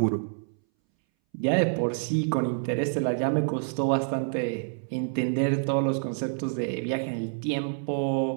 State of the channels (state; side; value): silent; left; 60 dB below the other